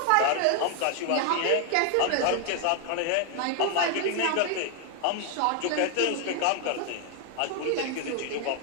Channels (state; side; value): different; both; correlation 0.01